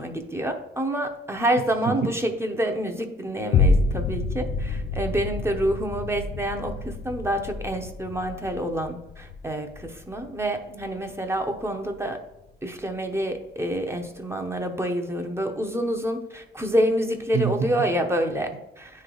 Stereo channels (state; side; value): normal; both; correlation 0.63